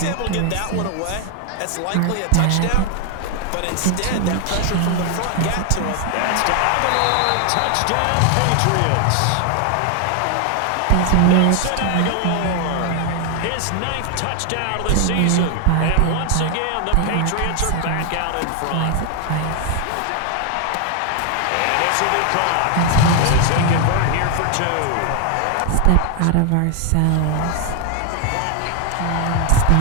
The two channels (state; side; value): different; both; correlation 0.00